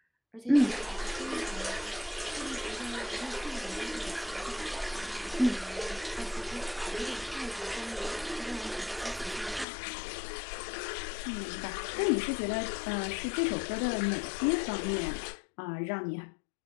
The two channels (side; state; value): right; drops out; at 9.7 s